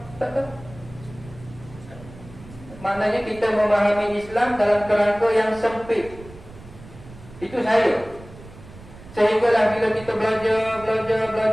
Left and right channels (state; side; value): noise; right; rumble, 19 dB below the sound